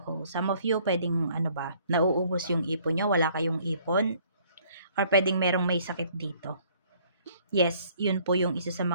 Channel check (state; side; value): inverted; both; correlation -0.60